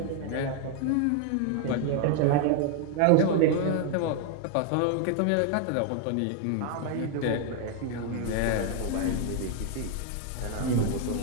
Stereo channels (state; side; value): different; both; correlation 0.00